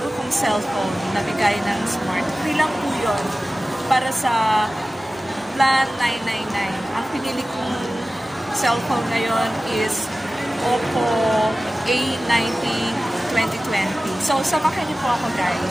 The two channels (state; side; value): normal; both; correlation 0.96